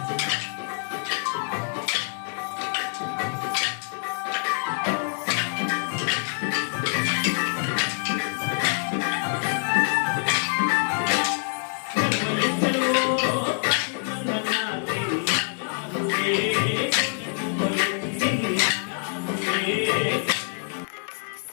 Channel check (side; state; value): right; silent; digital silence